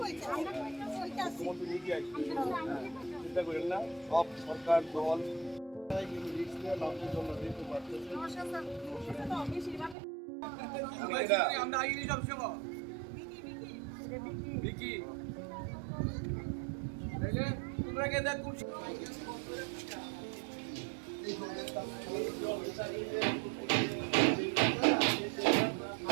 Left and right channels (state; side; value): drops out; left; at 10.0 s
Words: চিন্তা করেন না সব সরকার দল আমরা আগে সব সময় বিকি তোমরা কে দেখ